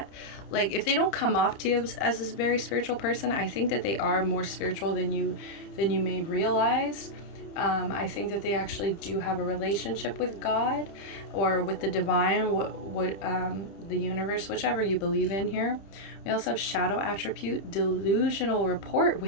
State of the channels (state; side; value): late; right; 30 ms